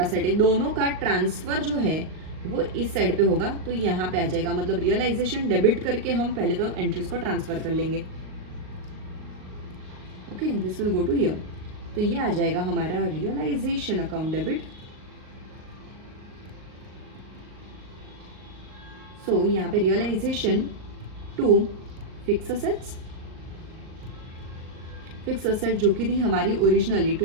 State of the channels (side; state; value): left; late; 38 ms